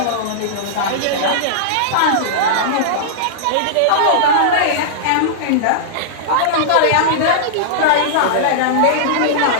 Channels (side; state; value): both; different; correlation -0.02